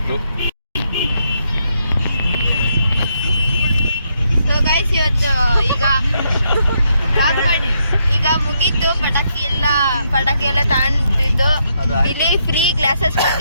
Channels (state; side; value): inverted; both; correlation -0.77